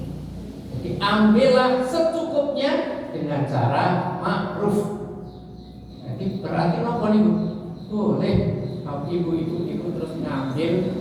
Jadi ambillah secukupnya dengan cara ma'ruf. Jadi berarti apa nih? Boleh kalau ibu terus ngambil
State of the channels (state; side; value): identical; both; correlation 1.00